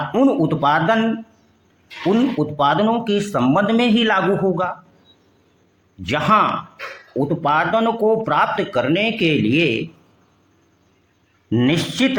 उत्पादनों के संबंध में ही लागू होगा जहां उत्पादन को प्राप्त करने के लिए निश्चित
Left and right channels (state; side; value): identical; both; correlation 1.00